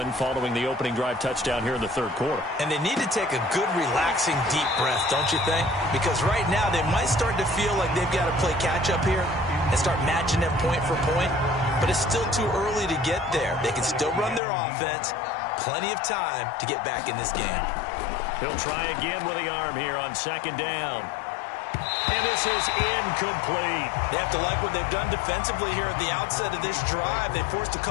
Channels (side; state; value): right; drops out; at 14.4 s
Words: following the opening drive touchdown here in the 3rd quarter. And they need to take a good, relaxing, deep breath, don't you think? Because right now they might start to feel like they've got to play catch-up here and start matching them point for point. But it's still too early to get there. They can still run their offense. Plenty of time to get back in this game. He'll try again with the arm here on 2nd down. And this is incomplete. They have to like what they've done defensively here at the outset of this drive. They forced a